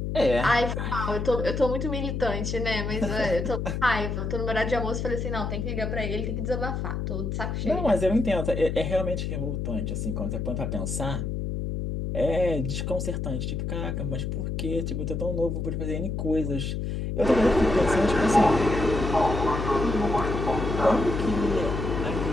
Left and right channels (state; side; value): noise; left; hum, 2 dB below the sound